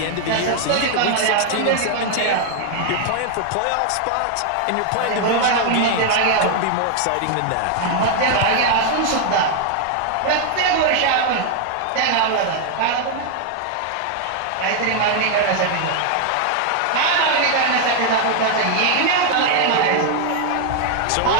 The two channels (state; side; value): different; both; correlation 0.00